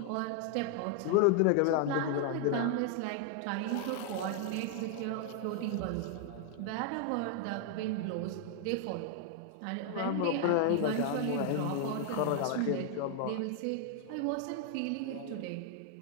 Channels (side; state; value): both; different; correlation 0.00